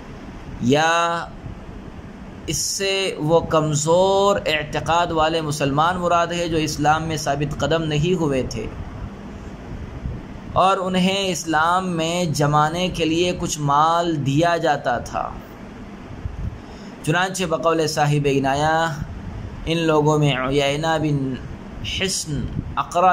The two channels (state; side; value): identical; both; correlation 1.00